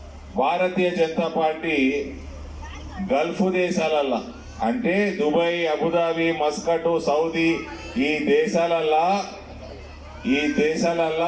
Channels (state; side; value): identical; both; correlation 1.00